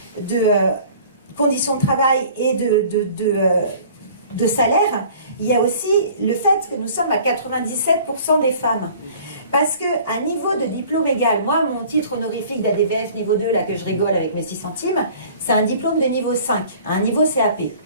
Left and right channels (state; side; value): inverted; both; correlation -0.49